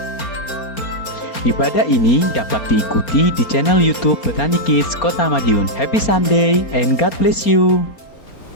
Ibadah ini dapat diikuti di channel YouTube Petani Kids Kota Madiun. Happy Sunday and God bless you.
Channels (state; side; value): late; right; 4.3 ms